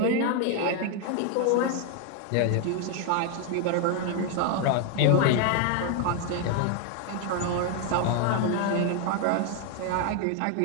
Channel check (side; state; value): both; different; correlation 0.01